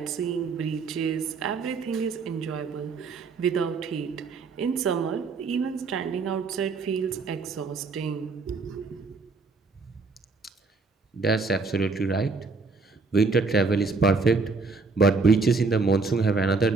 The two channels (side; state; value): left; quieter; 4.3 dB